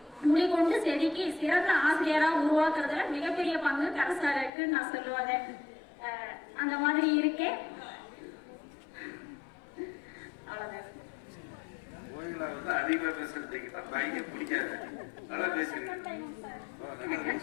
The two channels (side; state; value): right; drops out; at 4.5 s